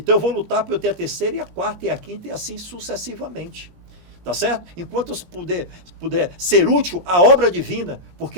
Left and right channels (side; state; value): left; late; 20 ms